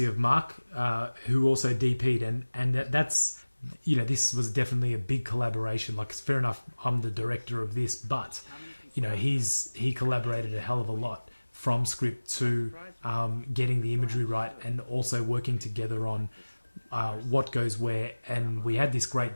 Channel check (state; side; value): inverted; both; correlation -1.00